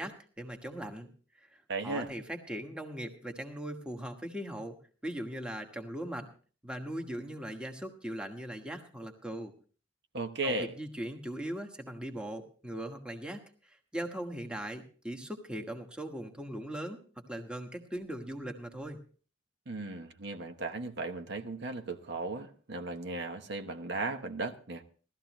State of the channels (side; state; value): both; normal; correlation 0.43